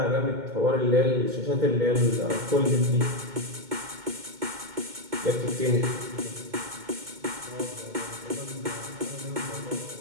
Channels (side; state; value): left; late; 2.2 ms